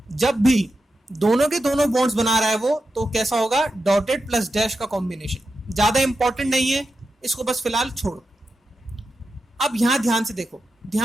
जब भी दोनों के दोनों बॉन्ड्स बना रहा है वो तो कैसा होगा, डॉटेड प्लस डैश का कॉम्बिनेशन। ज्यादा इंपॉर्टेंट नहीं है, इसको बस फिलहाल छोड़ो। अब यहां ध्यान से देखो,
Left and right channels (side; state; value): both; normal; correlation 0.89